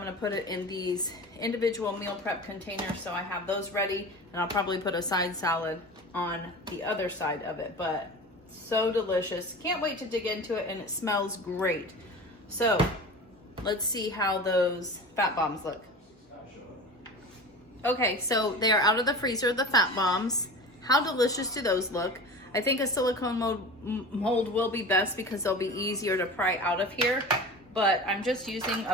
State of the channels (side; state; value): both; normal; correlation 0.34